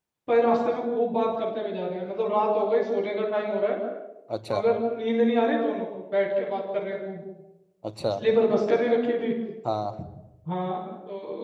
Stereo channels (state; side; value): identical; both; correlation 1.00